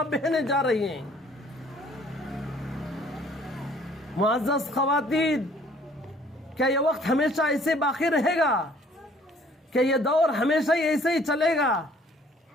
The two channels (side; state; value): both; normal; correlation 0.57